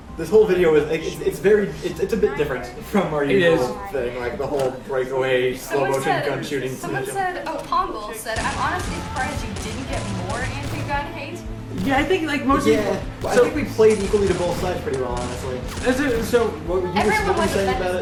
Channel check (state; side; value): identical; both; correlation 1.00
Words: This whole video is like, it's a bit different from our It usual thing, like the whole breakaway slow motion gun shooting. Someone said, oh, Pongle said, I'm honestly surprised you didn't get more anti-gun hate. Yeah, I think like most Yeah, well, I think we played equally to both sides pretty well, honestly. So, What were you Everyone was saying offended. about